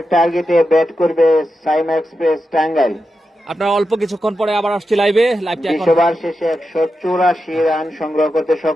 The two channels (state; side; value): normal; both; correlation 0.89